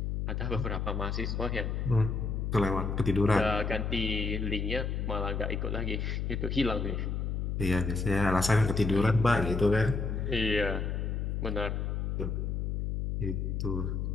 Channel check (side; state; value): left; noise; hum, 1 dB below the sound